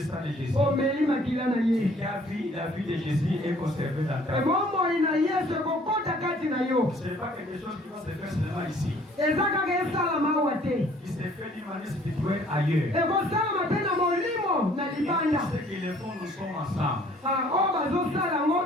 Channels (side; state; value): both; normal; correlation 0.57